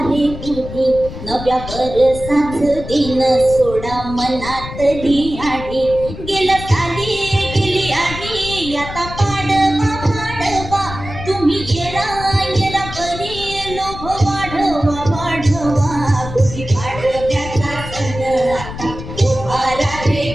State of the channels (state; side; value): noise; left; rumble, 10 dB below the sound